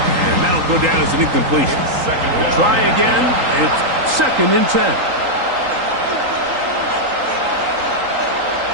that'll go down as an incompletion. We'll try again. It's 2nd and 10.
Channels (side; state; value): left; late; 3.8 ms